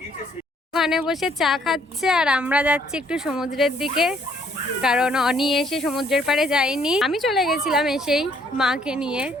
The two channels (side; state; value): both; normal; correlation 0.65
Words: ওখানে বসে চা খাচ্ছে আর আমরা যাচ্ছি একটু সমুদ্রের দিকে, কারণ অনি এসে সমুদ্রের পাড়ে যায়নি। আমি চলে গেছিলাম এসেই মাকে নিয়ে।